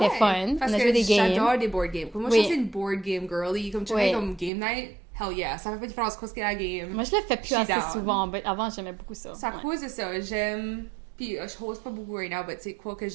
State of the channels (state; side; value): drops out; left; at 4.5 s